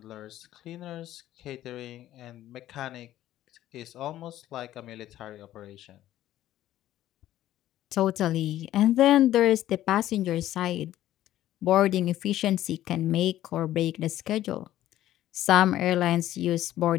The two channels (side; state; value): right; quieter; 13.4 dB